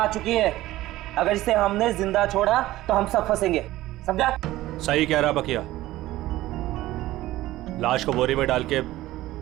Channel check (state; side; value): quieter; left; 16.2 dB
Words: चुकी है, अगर इसे हमने जिंदा छोड़ा तो हम सब फंसेंगे, समझा? सही कह रहा बकिया, लाश को बोरी में डाल के